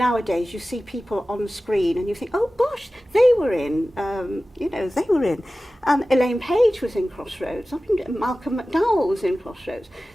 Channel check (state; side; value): normal; both; correlation 0.96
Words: you see people on screen and you think, oh gosh, they were in, they were in. And Elaine Page was in Crossroads. I mean, Malcolm McDowell was in Crossroads.